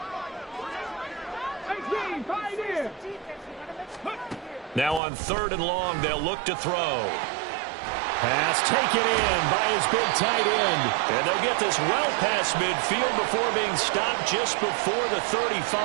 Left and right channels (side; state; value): left; drops out; at 5.0 s